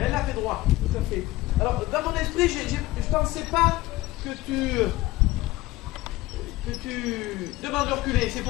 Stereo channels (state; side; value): quieter; right; 18.4 dB